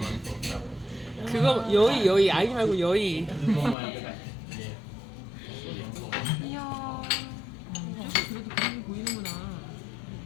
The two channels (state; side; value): drops out; right; at 3.8 s